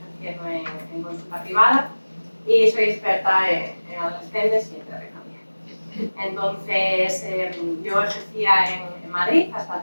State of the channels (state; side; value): inverted; both; correlation -1.00